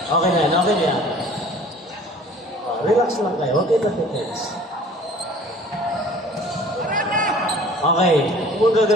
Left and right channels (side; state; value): both; normal; correlation 0.48